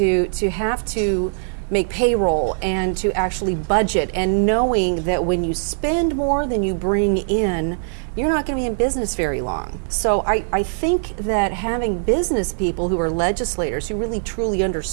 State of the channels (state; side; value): silent; left; digital silence